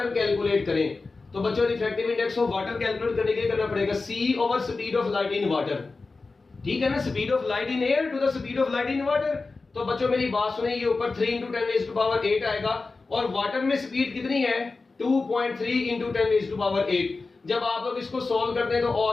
calculate करें, तो बच्चों refractive index of water calculate करने के लिए करना पड़ेगा C over speed of light in water, ठीक है ना, speed of light in air to the speed of light in water. तो बच्चों मेरी बात सुनिए, ये ऊपर 3 इंटू 10⁸ आएगा, और वाटर में स्पीड कितनी है 2.3 इंटू 10⁸। जब आप लोग इसको सॉल्व करते हैं तो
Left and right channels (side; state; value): right; quieter; 3.8 dB